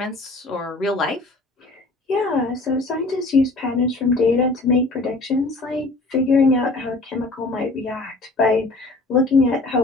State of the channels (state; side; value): quieter; right; 3.0 dB